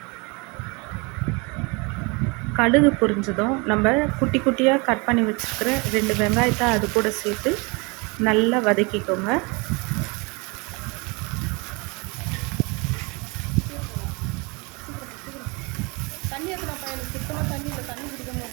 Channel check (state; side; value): quieter; left; 28.8 dB